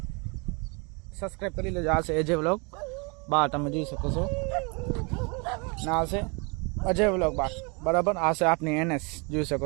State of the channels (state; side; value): quieter; left; 31.4 dB